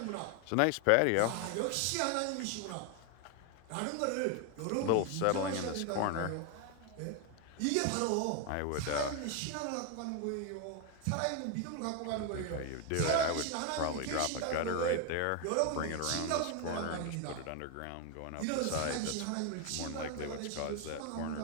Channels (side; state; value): both; different; correlation 0.01